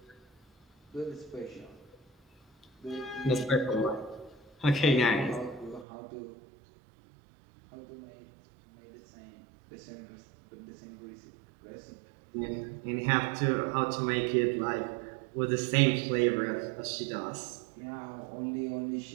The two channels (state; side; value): drops out; left; at 5.9 s